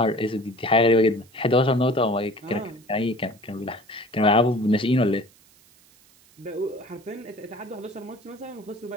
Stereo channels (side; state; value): right; noise; hiss, 29 dB below the sound